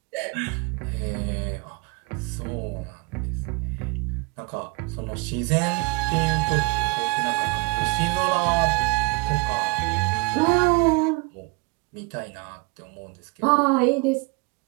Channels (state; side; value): quieter; left; 29.6 dB